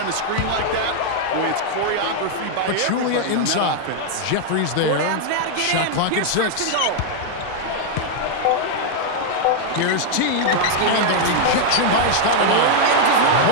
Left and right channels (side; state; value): both; different; correlation 0.00